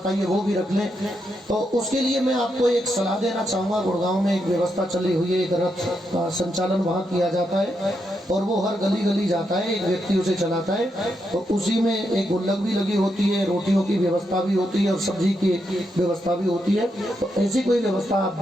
वो भी रख लें। तो उसके लिए मैं आपको एक सलाह देना चाहूँगा। गुड़गांव में एक व्यवस्था चली हुई है, एक रथ का संचालन वहाँ किया जाता है। और वो हर गली गली जाता है, एक व्यक्ति उसे चलाता है, तो उसी में एक गुल्लक भी लगी होती है, रोटियों की व्यवस्था भी होती है और सब्जी की व्यवस्था भी होती है। तो ऐसी कोई व्यवस्था आप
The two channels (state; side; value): normal; both; correlation 0.82